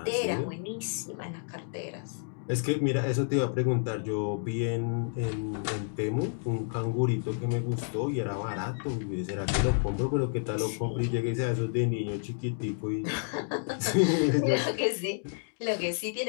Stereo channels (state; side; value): silent; right; digital silence